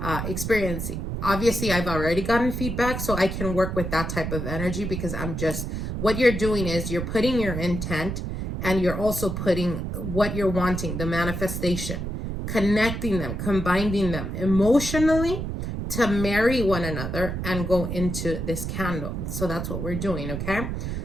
Obviously, I've already gotten feedback, so I can work with that type of energy, because what you're doing is you're putting your intent, and you're also putting what you're wanting, the manifestation, connecting them, combining them emotionally to marry one another and go into this candle. So that's what we're doing, okay?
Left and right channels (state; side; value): noise; right; rumble, 4 dB below the sound